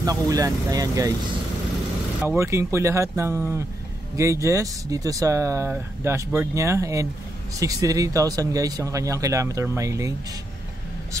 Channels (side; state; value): both; normal; correlation 0.82